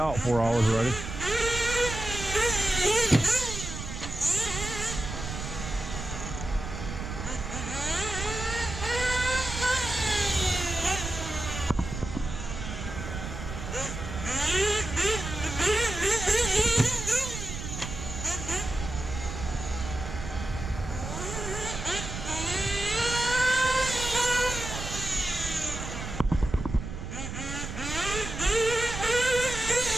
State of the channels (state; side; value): noise; right; rumble, 7 dB below the sound